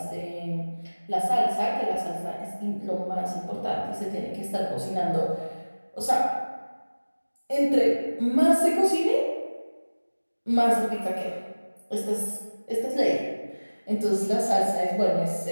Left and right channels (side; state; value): both; inverted; correlation -1.00